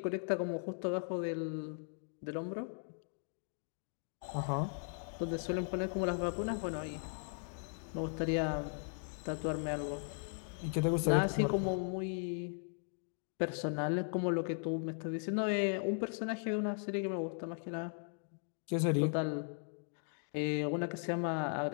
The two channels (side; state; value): right; silent; 53 dB below the other